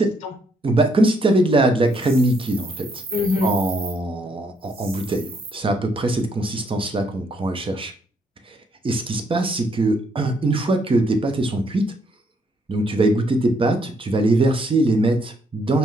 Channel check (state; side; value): normal; both; correlation 0.72